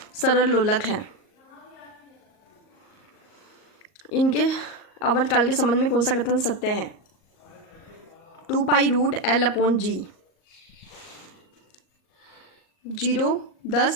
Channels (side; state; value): right; late; 38 ms